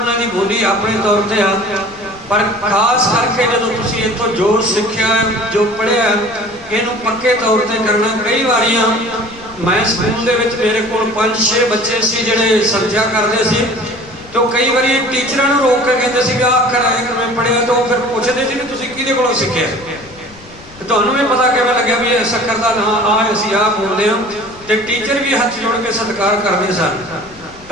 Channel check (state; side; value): noise; left; rumble, 22 dB below the sound